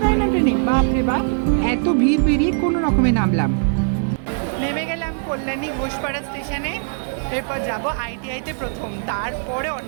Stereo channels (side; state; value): left; silent; 64 dB below the other